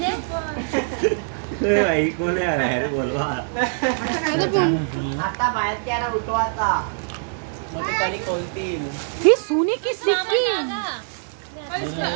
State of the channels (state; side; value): silent; left; digital silence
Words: भाई कोण आहे रे बोलवा आता बाहेर त्याला उठवा आता. कधी कोणती ही सोने की सिक्की